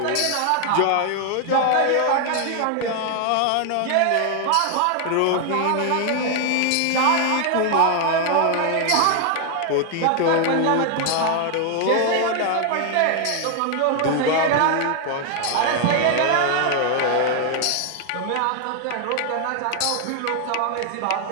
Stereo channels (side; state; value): both; different; correlation 0.00